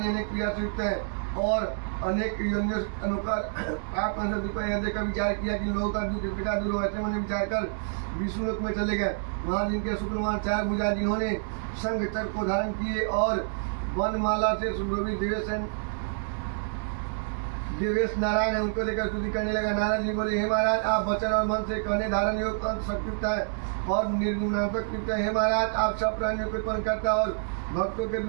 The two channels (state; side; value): silent; left; digital silence